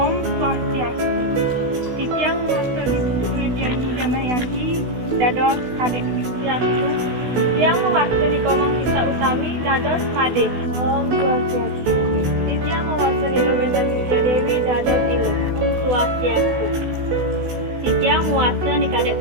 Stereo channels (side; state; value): left; late; 16 ms